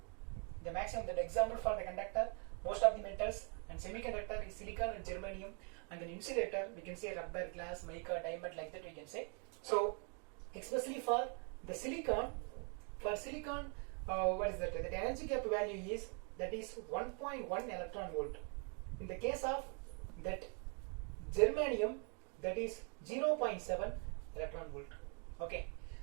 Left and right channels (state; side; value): quieter; left; 38.4 dB